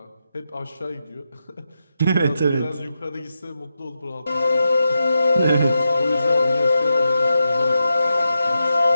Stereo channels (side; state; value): both; inverted; correlation -0.88